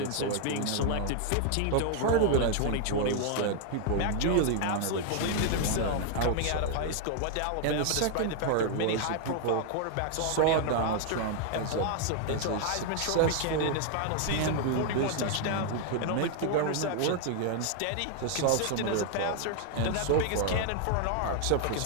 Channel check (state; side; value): different; both; correlation 0.00